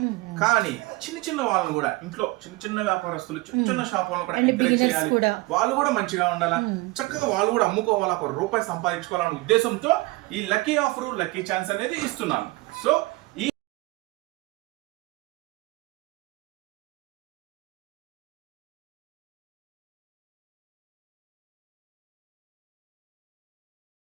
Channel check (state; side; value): quieter; left; 21.9 dB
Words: కానీ చిన్న చిన్న వాళ్ళని కూడా, ఇంట్లో చిన్న చిన్న వ్యాపారస్తులు, చిన్న చిన్న షాప్ వాళ్ళని కూడా ఎంకరేజ్ చేయాలి, వాళ్ళు కూడా మంచిగా ఉండాలా, చక్కగా వాళ్ళు కూడా అమ్ముకోవాలా, ₹1 సంపాదించుకోవాలనే ఉద్దేశంతో ఈ లక్కీ ఆఫర్, లక్కీ ఛాన్స్ అనేది ఇస్తున్నాను. సో